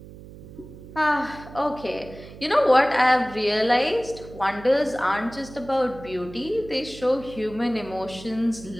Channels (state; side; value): noise; right; hum, 17 dB below the sound